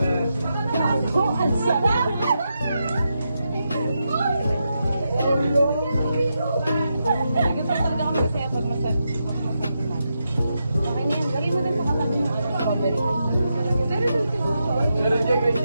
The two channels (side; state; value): both; inverted; correlation -0.85